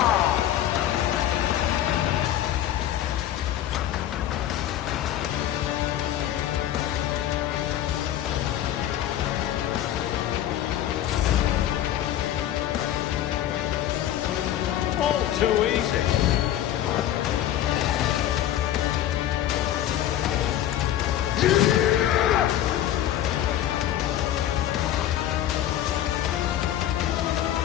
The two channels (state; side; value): quieter; right; 11.9 dB